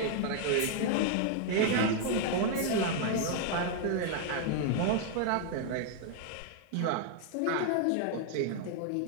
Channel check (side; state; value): both; different; correlation 0.00